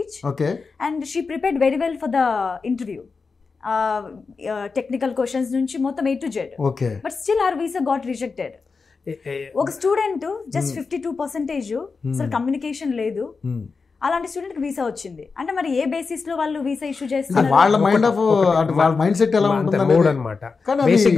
Okay. And she prepared very well for the interview. Technical questions నుంచి మొత్తం A to Z. Okay. But still her visa got rejected. ఒక student just 52% అసలు communication లేదు, అలాంటి student కి visa వచ్చింది అంటే మరి ఏ బేసిస్ లో వాళ్ళు వీసా ఇష్యూ చేస్తున్నారు? వాళ్ళ మైండ్ సెట్ ఎలా ఉంటుంది అన్నమాట. బేసిక్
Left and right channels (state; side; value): quieter; right; 4.7 dB